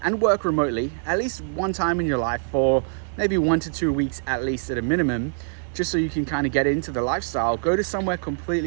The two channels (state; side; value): silent; left; digital silence